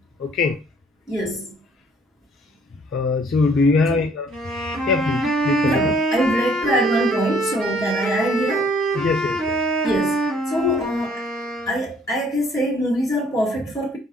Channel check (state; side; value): normal; both; correlation 0.61